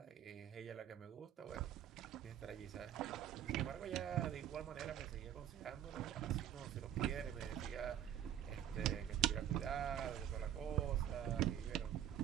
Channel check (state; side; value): quieter; left; 10.6 dB